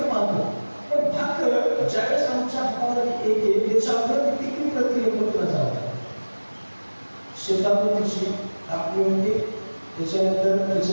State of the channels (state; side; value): inverted; both; correlation -1.00